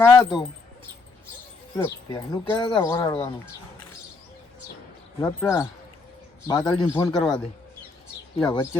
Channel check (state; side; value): quieter; right; 3.8 dB